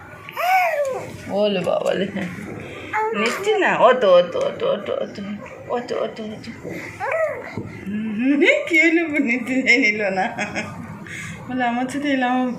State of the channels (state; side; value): identical; both; correlation 1.00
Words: ওলে বাবলে নিচ্ছি না। অত অত অত অত অত অত অত অত কি হলো? নিতে নিল না বলে আমার সাথে এলাম